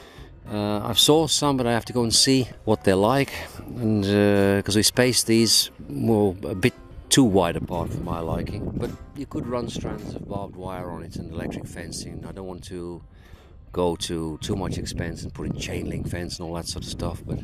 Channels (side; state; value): both; identical; correlation 1.00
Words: I've saw some, but I have to go and see what they're like, and because we spaced these a bit too wide apart for my liking. But you could run strands of barbed wire on it and electric fencing. I don't want to go to too much expense and put in chain link fence and all that sort of stuff, but